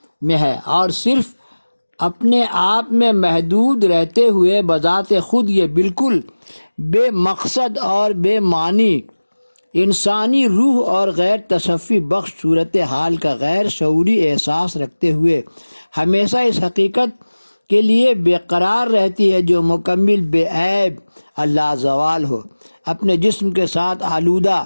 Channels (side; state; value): both; inverted; correlation -1.00